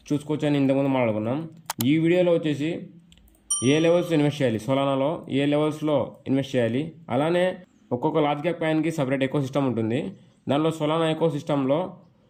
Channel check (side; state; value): both; identical; correlation 1.00